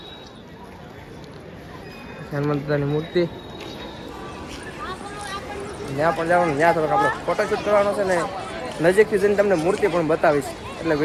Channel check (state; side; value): identical; both; correlation 1.00